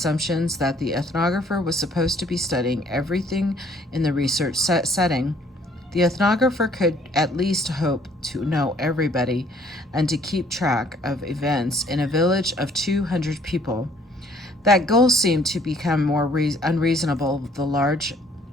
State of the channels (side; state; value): both; normal; correlation 0.61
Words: that the ethnographer was supposed to be studying everything in the research setting. The ethnographer could at least hope to know everybody and to keep track of events in a village of 200 people. That goal seemed to become more unreasonable the larger